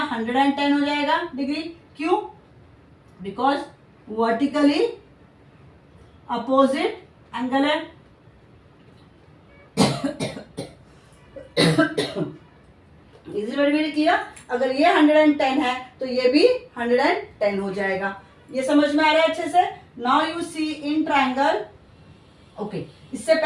110 हो जाएगा डिग्री। क्यों? बिकॉज वर्टिकली अपोजिट एंगल है। Is very clear? अगर ये 110 है तो ये भी 110 हो जाएगा। ये समझ में आ रहा है अच्छे से? Now you see in triangle. Okay इससे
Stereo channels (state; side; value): identical; both; correlation 1.00